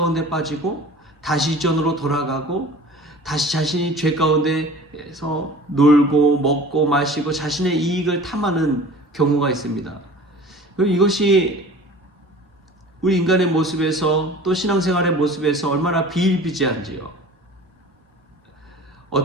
빠지고 다시 이전으로 돌아가고 다시 자신이 죄 가운데서 놀고 먹고 마시고 자신의 이익을 탐하는 경우가 있습니다. 이것이 우리 인간의 모습에서 또 신앙생활의 모습에서 얼마나 비일비재한지요.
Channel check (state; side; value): normal; both; correlation 0.42